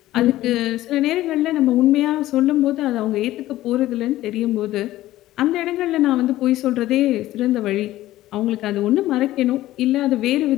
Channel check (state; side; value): quieter; right; 15.3 dB